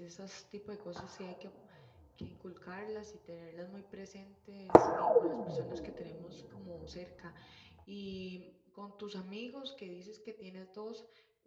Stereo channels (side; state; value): both; identical; correlation 1.00